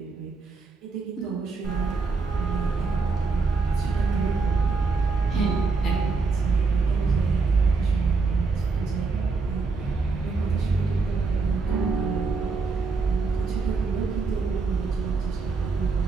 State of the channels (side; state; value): left; quieter; 4.3 dB